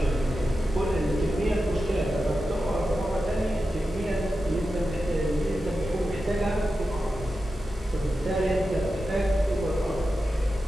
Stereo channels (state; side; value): normal; both; correlation 0.91